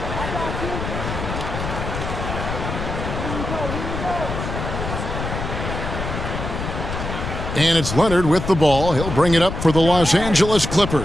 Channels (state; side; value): noise; left; rumble, 5 dB below the sound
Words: And it's Leonard with the ball. He'll bring it up for the Los Angeles